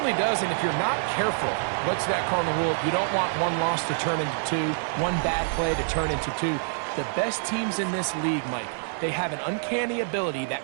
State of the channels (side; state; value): left; silent; digital silence